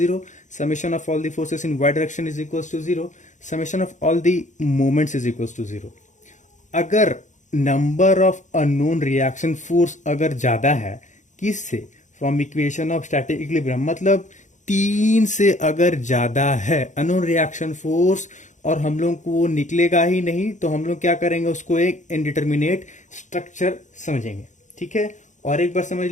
summation of all the forces in y direction is equals to 0, summation of all the moments is equals to 0। अगर number of unknown reaction force अगर ज्यादा है, किससे, from equation of static equilibrium, मतलब 3 से अगर ज्यादा है अननोन रिएक्शन फोर्स और हम लोग को वो निकलेगा ही नहीं, तो हम लोग क्या करेंगे, उसको एक इनडिटरमिनेट स्ट्रक्चर समझेंगे, ठीक है। और एक बार समझ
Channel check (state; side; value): late; right; 0.35 ms